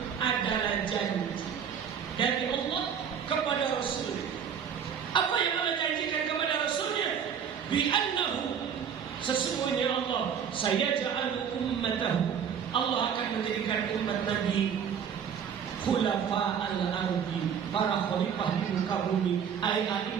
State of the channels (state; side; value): quieter; left; 7.7 dB